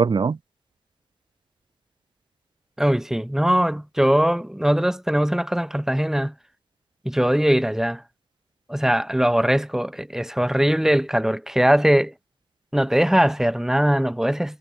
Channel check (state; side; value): normal; both; correlation 0.98